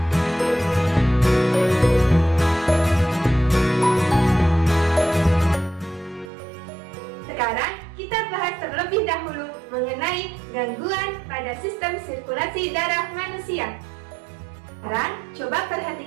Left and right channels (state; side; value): drops out; left; at 6.3 s